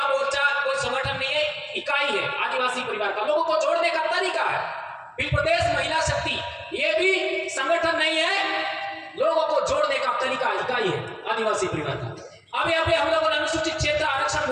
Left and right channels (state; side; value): identical; both; correlation 1.00